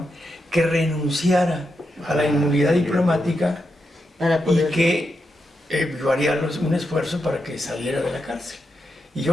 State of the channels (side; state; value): both; normal; correlation 0.85